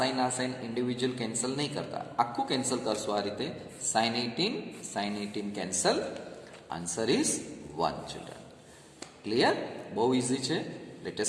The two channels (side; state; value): both; identical; correlation 1.00